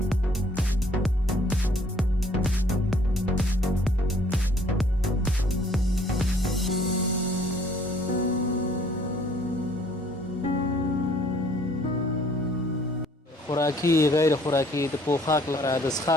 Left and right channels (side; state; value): both; normal; correlation 0.60